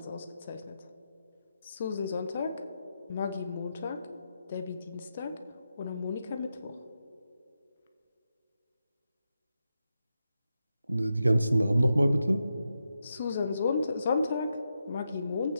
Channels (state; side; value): inverted; both; correlation -0.87